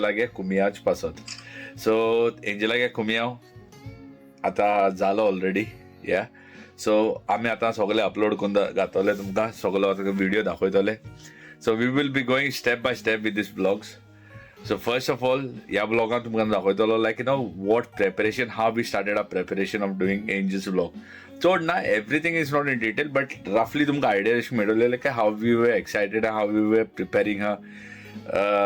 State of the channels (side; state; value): both; identical; correlation 1.00